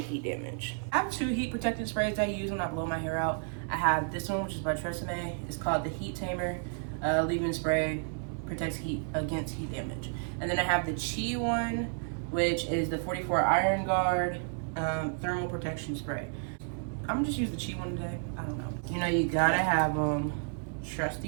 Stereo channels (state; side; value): silent; left; 57 dB below the other